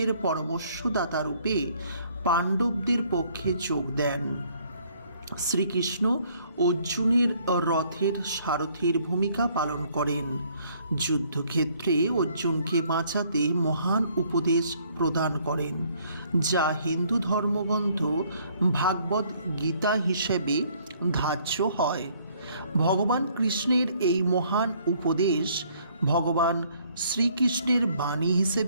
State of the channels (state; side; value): inverted; both; correlation -0.63